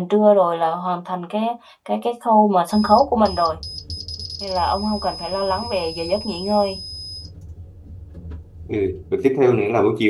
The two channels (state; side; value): identical; both; correlation 1.00